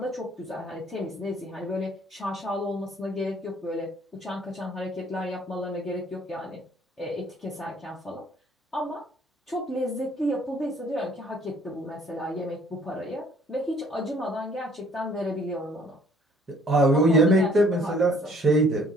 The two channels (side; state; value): both; normal; correlation 0.59